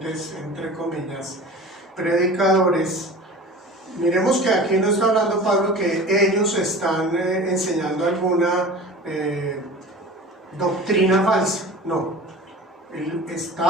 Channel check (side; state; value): both; normal; correlation 0.38